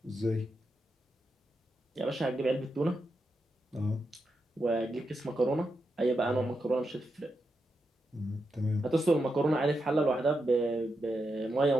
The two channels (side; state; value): both; normal; correlation 0.86